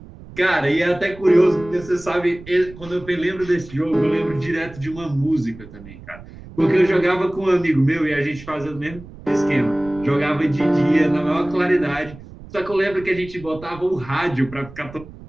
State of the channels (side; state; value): right; noise; rumble, 17 dB below the sound